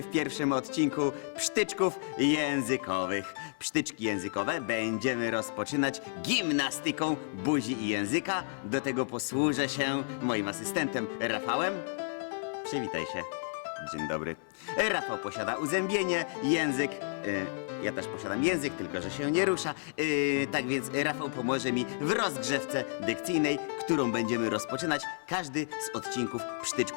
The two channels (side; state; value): right; silent; digital silence